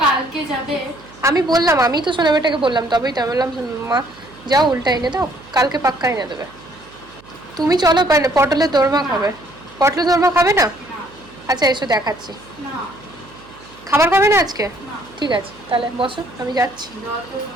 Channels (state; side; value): noise; right; hum, 24 dB below the sound